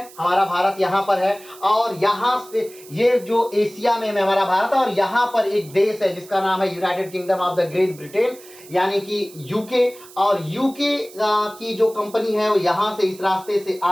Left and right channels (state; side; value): noise; right; hiss, 21 dB below the sound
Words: हमारा भारत यहां पर है, और यहां से ये जो एशिया में हमारा भारत है, और यहां पर एक देश है जिसका नाम है United kingdom of the great Britain, यानी कि यूके। और यूके की जो कंपनी है वो यहां से इस रास्ते से